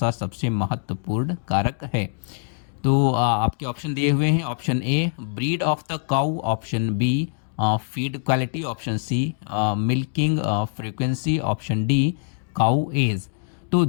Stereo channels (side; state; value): right; silent; digital silence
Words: सबसे महत्वपूर्ण कारक है। तो आपके ऑप्शन दिए हुए हैं। Option A breed of the cow, option B feed quality, option C milking frequency, option D cow age. तो